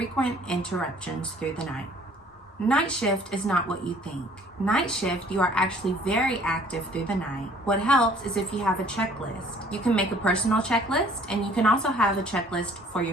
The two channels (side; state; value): both; normal; correlation 0.55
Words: interruptions through the night. Night shift is not what you think. Night shift, you are actually very active through the night. What helps is if you have a checklist. You can make a personal checklist, and you can also have a checklist for